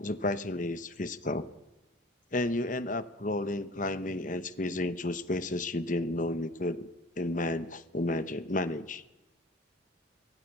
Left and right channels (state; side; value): normal; both; correlation 0.44